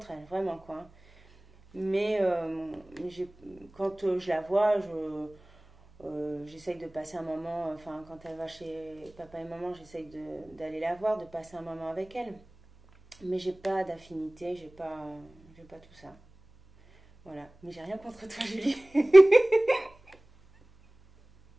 elle, vraiment, quoi. Mais quand je la vois, j'essaye de passer un moment. Enfin, quand elle va chez papa et maman, j'essaye d'aller la voir, de passer un moment avec elle. Mais j'ai pas d'affinité, j'ai pas tout ça. Voilà, mais j'ai rien contre toi, Julie.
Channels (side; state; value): right; noise; hum, 27 dB below the sound